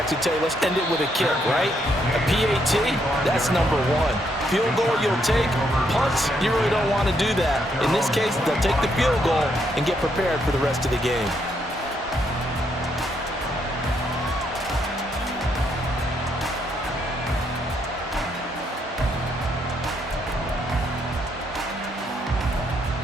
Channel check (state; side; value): normal; both; correlation 0.75